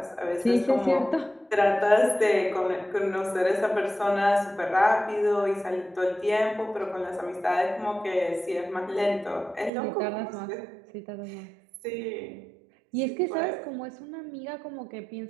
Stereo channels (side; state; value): left; drops out; at 9.7 s